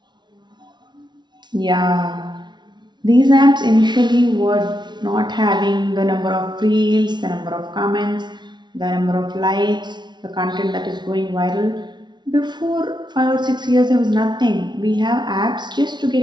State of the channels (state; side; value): late; left; 0.21 ms